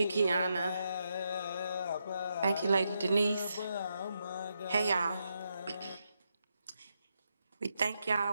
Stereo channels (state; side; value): inverted; both; correlation -0.83